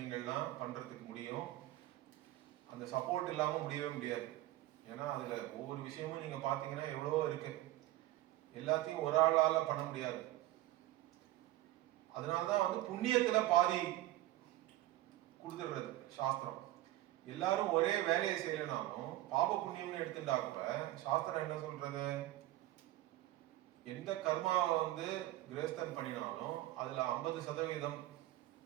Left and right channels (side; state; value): left; quieter; 15.9 dB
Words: பண்றதுக்கு முடியும். அந்த சப்போர்ட் இல்லாம முடியவே முடியாது. ஏன்னா அதுல ஒவ்வொரு விஷயமும் நீங்க பாத்தீங்கன்னா எவ்வளவோ இருக்கு, எல்லாத்தையும் ஒரு ஆளால பண்ண முடியாது. அதனாலதான் வந்து புண்ணியத்துல பாதி கொடுத்துடுறது சாஸ்திரம். எல்லாரும் ஒரே வேலையை செய்யலனாலும் பாப புண்ணியம்னு எடுத்துட்டா கூட சாஸ்திரம் என்ன சொல்றது, எந்த கர்மாவை வந்து கிரேஸ்தன் பண்ணினாலும் அதுல 50%